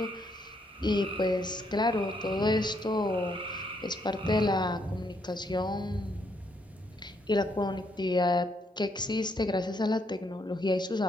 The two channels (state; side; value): normal; both; correlation 0.74